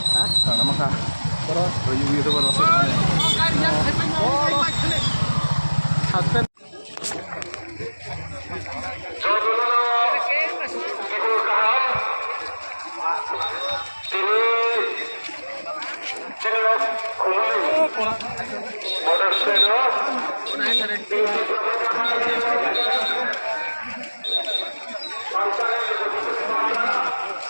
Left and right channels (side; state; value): both; inverted; correlation -1.00